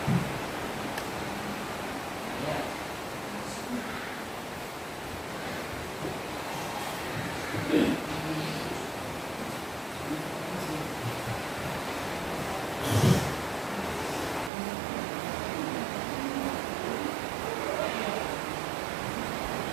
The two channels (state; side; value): drops out; left; at 14.5 s